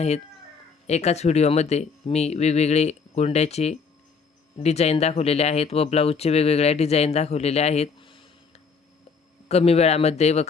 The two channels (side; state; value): right; quieter; 5.3 dB